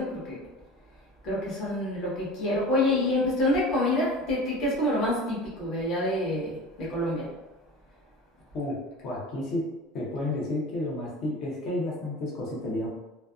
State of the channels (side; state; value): both; normal; correlation 0.36